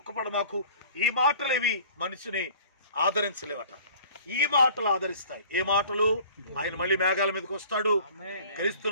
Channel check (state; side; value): inverted; both; correlation -0.49